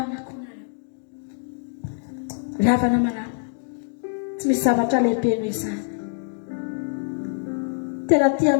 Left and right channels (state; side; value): silent; right; 62 dB below the other